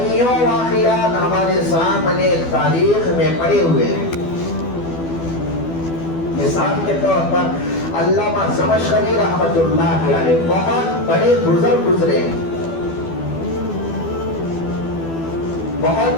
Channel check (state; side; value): late; right; 12 ms